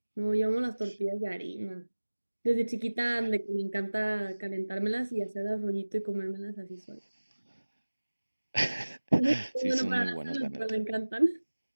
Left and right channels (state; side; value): inverted; both; correlation -1.00